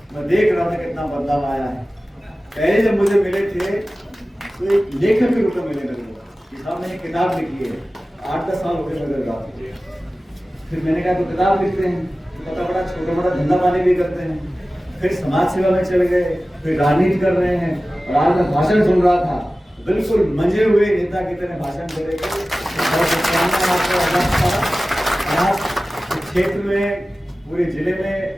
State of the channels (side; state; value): both; normal; correlation 0.96